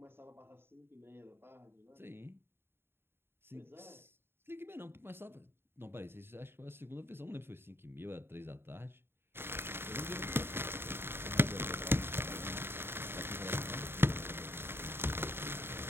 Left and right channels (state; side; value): late; left; 0.11 ms